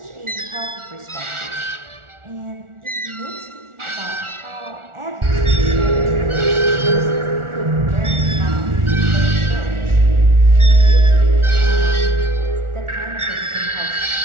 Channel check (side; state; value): left; late; 1.4 ms